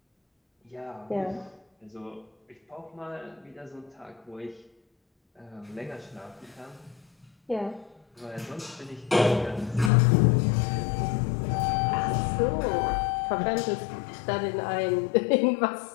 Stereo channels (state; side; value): drops out; right; at 9.9 s